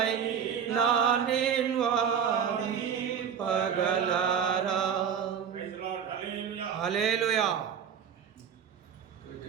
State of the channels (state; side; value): quieter; left; 7.8 dB